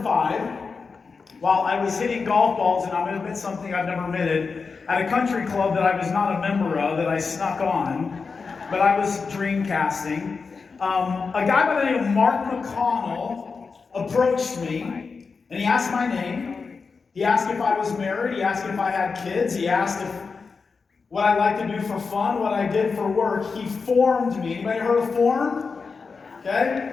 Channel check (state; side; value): quieter; right; 4.9 dB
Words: while I was hitting golf balls, and I'm going to admit something I've never admitted, at a country club that I was not a member of, that I snuck on, but I was dreamcasting, a guy by the name of Mark McConnell approached me, and he asked my name. He asked if I was married. He asked if I had kids. He asked what I like to do for fun, what I did for work. He formed me. Anybody heard of form?